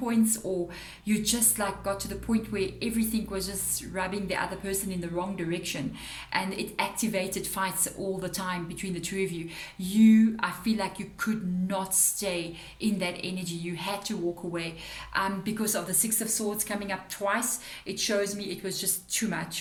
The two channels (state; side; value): identical; both; correlation 1.00